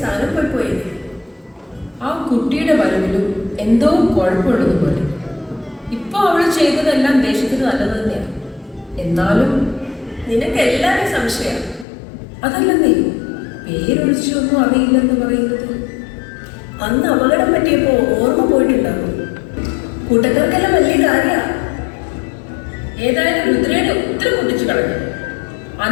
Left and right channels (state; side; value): drops out; right; at 11.9 s